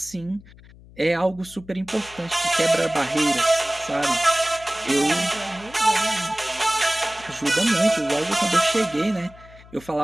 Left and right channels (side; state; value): left; noise; hum, 22 dB below the sound